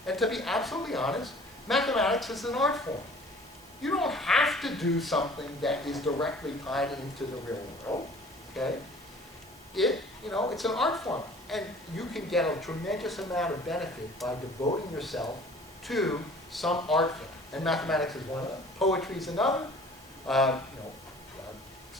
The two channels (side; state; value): both; normal; correlation 0.49